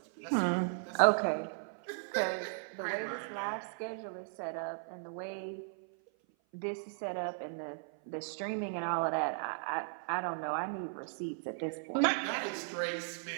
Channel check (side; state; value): left; silent; 53 dB below the other